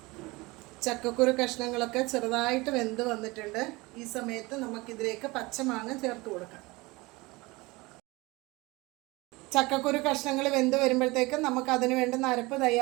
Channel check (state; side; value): quieter; left; 23.2 dB